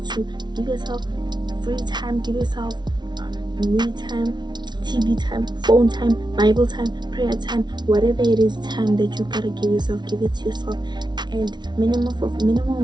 give yourself free time, give yourself me time, TV time, phone time, Bible time, prayer time, whatever it is, time that you gotta give yourself, give it to yourself. And minimum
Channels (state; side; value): late; left; 0.20 ms